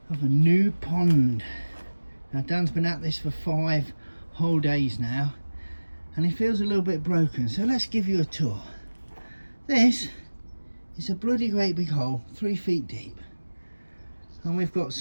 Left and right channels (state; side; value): inverted; both; correlation -1.00